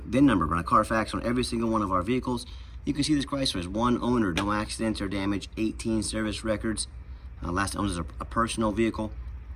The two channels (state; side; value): identical; both; correlation 1.00